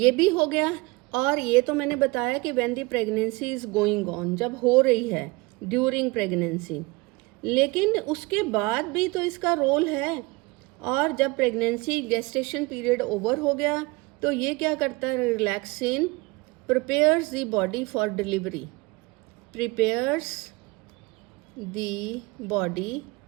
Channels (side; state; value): left; quieter; 24.4 dB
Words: भी हो गया। और ये तो मैंने बताया कि when the pregnancy is going on, जब हो रही है ड्यूरिंग प्रेगनेंसी, लेकिन उसके बाद भी तो इसका रोल है। और जब प्रेगनेंसी गेस्टेशन पीरियड ओवर हो गया तो ये क्या करता है, relaxin prepares the body for delivery, prepares the body,